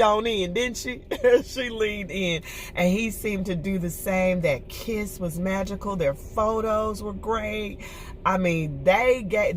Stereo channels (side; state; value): both; identical; correlation 1.00